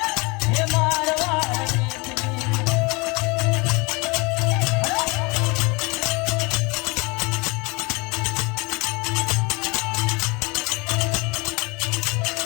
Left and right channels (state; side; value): quieter; right; 27.3 dB